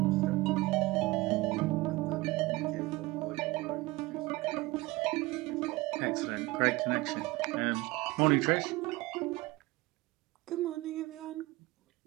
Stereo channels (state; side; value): quieter; left; 21.1 dB